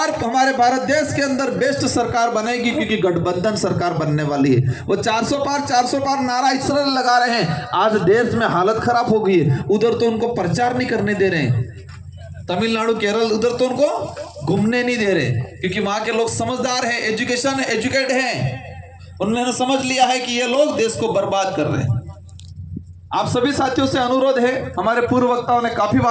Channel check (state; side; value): identical; both; correlation 1.00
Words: हमारे भारत देश के अंदर बेस्ट सरकार बनेगी, क्योंकि गठबंधन सरकार बनने वाली है। वो 400 पार नारा इसलिए लगा रहे हैं, आज देश में हालत खराब हो गई है। उधर तो उनको प्रचार नहीं करने दे रहे हैं, तमिलनाडु केरल, उधर तो उनको घूमने नहीं दे रहे, क्योंकि वहां के लोग समझदार हैं, एजुकेट हैं। उन्होंने समझ लिया है कि ये लोग देश को बर्बाद कर रहे हैं। आप सभी साथियों से अनुरोध है, हमारे पूर्व वक्ताओं ने काफी